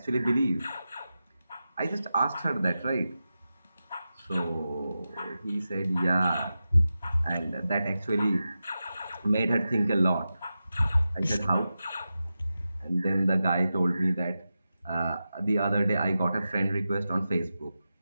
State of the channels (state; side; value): inverted; both; correlation -0.92